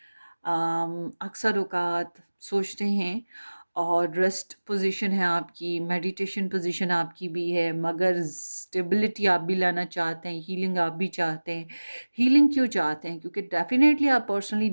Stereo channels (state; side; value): inverted; both; correlation -1.00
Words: अक्सर औकात सोचते हैं। और रेस्ट पोजीशन है आपकी, मेडिटेशन पोजीशन आपकी भी है, मगर स्टेबिलिटी आप भी लाना चाहते हैं, हीलिंग आप भी चाहते हैं। हीलिंग क्यों चाहते हैं? क्योंकि डेफिनेटली आप पर्सनली